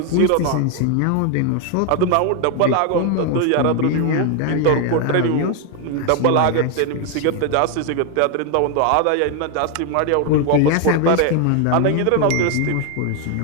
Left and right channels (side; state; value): both; different; correlation 0.01